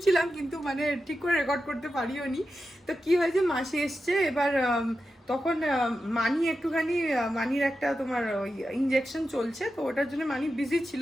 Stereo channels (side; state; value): both; normal; correlation 0.90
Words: কিন্তু মানে ঠিক করে রেকর্ড করতে পারিও নি। তো কি হয়েছে, মাসি এসছে, এবার তখন মানি একটুখানি, মানির একটা তোমার ওই ইঞ্জেকশন চলছে, তো ওটার জন্য মানি বিজি